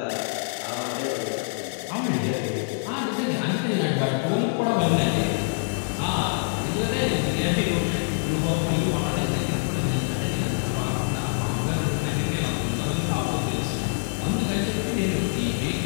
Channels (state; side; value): silent; right; digital silence